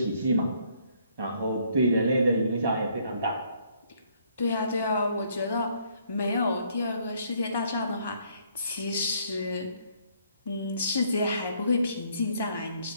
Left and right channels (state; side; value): inverted; both; correlation -0.66